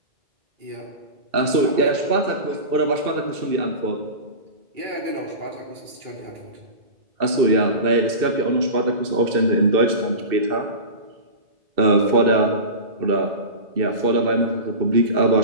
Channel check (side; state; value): left; late; 2.6 ms